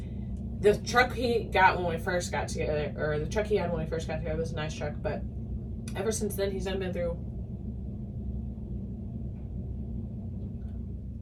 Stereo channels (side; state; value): both; identical; correlation 1.00